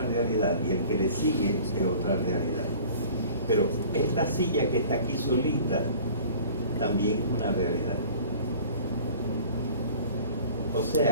realidad y el que le sigue es otra realidad. Pero esta silla que está aquí solita también es una realidad. O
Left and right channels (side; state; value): both; inverted; correlation -0.46